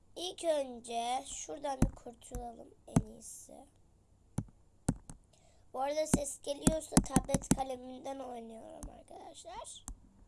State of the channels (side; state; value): both; identical; correlation 1.00